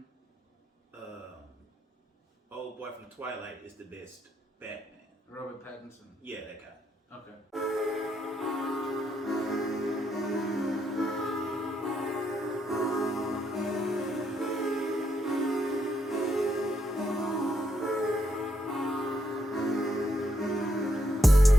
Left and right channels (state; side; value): normal; both; correlation 0.78